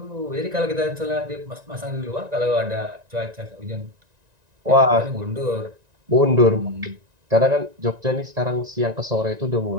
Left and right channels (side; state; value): left; late; 1.9 ms